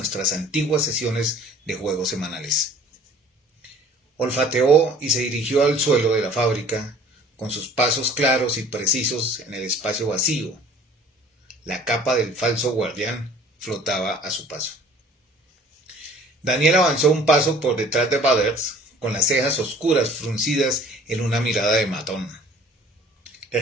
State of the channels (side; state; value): both; normal; correlation 0.51